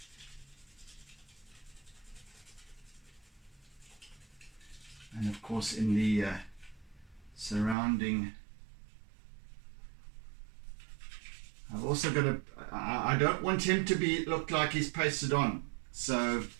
And of course in the surrounding, I've also got I don't want him to look like he's pasted on, so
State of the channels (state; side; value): drops out; left; at 7.8 s